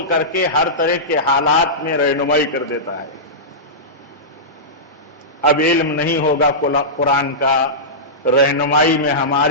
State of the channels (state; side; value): normal; both; correlation -0.15